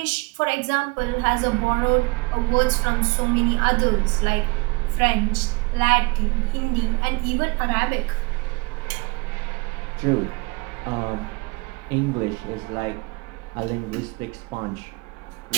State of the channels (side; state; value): left; quieter; 26.6 dB